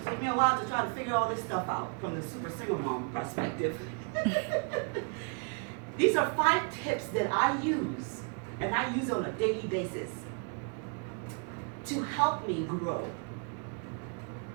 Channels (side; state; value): left; quieter; 39.2 dB